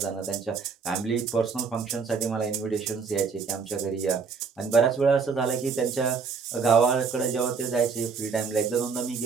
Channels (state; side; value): quieter; left; 5.4 dB